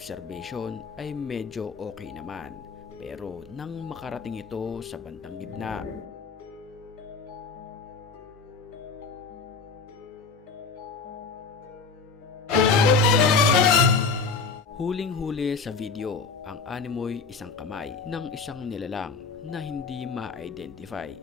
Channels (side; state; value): right; quieter; 4.9 dB